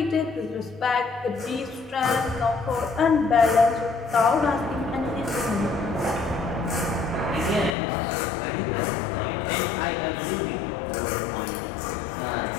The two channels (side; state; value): right; drops out; at 7.8 s